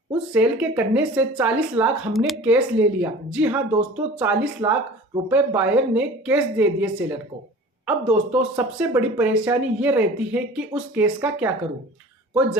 उस सेल के करने से 40 लाख हमने कैश ले लिया। जी हाँ दोस्तों, 40 लाख रुपए बायर ने कैश दे दिए सेलर को। अब दोस्तों, सबसे बड़ी परेशानी ये रहती है कि उस कैश का क्या करूं। कोई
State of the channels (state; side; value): normal; both; correlation 0.42